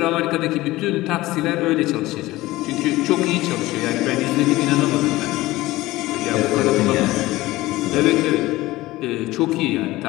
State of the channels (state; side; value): quieter; right; 18.2 dB